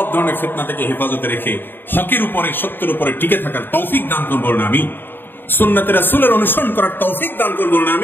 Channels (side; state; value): right; late; 0.096 ms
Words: ধরনের ফিতনা থেকে হেফাজতে রেখে হকের উপরে, সত্যের উপরে টিকে থাকার তৌফিক দান করুন বলুন আমিন। সুন্নাতে রাসূলের অনুসরণ করার তৌফিক দান করুন বলুন